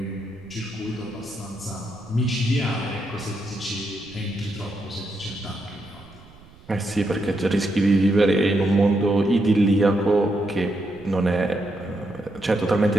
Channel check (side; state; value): right; noise; rumble, 23 dB below the sound